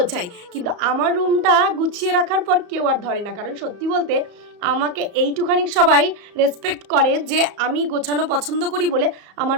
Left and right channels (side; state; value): left; late; 34 ms